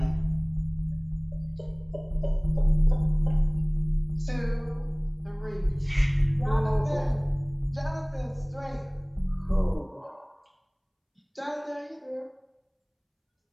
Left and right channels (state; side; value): identical; both; correlation 1.00